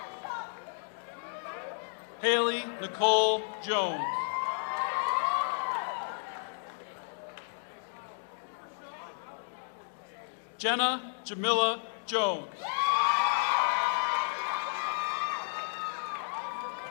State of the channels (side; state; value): right; silent; digital silence